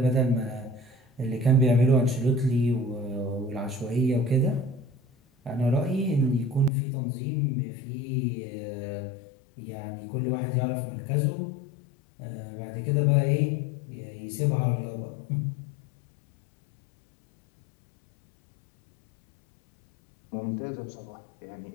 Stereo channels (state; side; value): drops out; right; at 6.7 s